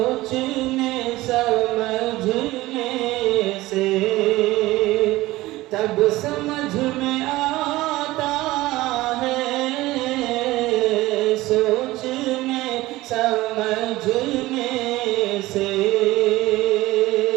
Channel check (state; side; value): quieter; left; 18.3 dB